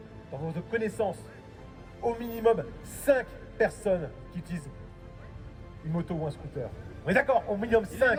dans vos connaissances, au minimum 5 personnes qui utilisent une moto ou un scooter. On est d'accord? Au minimum 5.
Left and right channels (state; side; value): identical; both; correlation 1.00